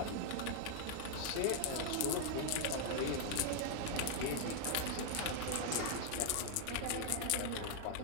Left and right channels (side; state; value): both; different; correlation 0.00